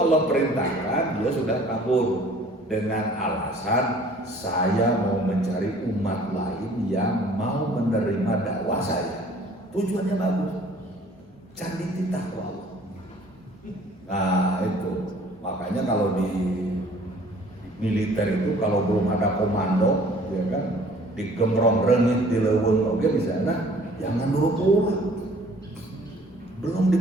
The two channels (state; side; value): normal; both; correlation 0.53